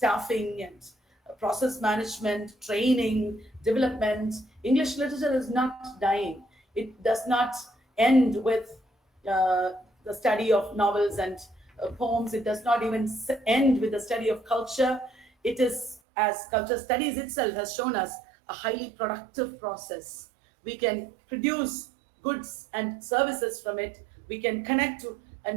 and process management, training, development. English literature is not dying. It does not end with the study of novels and poems. It does not even end with the study of culture. It is, as culture studies itself has shown us, a highly productive process. We can produce goods and services from it. We can connect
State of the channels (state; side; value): drops out; left; at 16.0 s